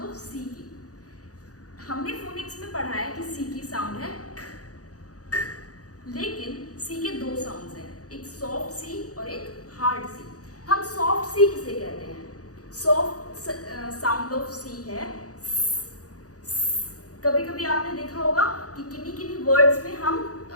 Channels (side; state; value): right; late; 0.67 ms